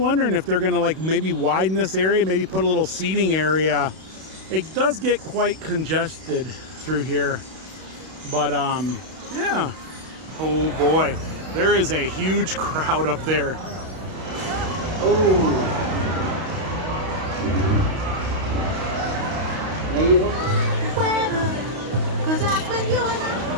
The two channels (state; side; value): late; left; 32 ms